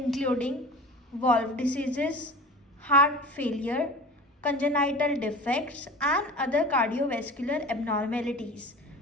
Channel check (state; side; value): normal; both; correlation 0.37